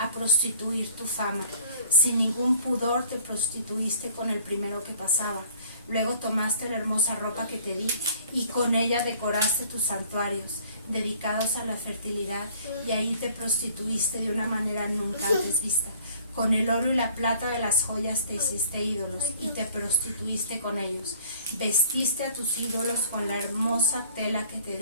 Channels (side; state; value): both; inverted; correlation -0.55